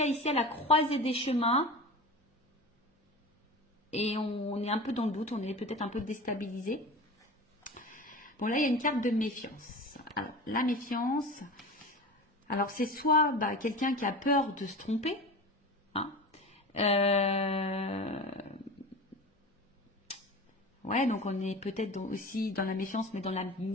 ici à la croisée des chemins. Et on est un peu dans le doute, on est peut-être un peu déstabilisé. Bon, là, il y a une carte de méfiance. Alors, la méfiance, alors c'est soit bah, quelqu'un qui a peur de se tromper, hein. Ouais, donc on est peut-être aussi dans la méfiance, mais dans la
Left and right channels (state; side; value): normal; both; correlation 0.32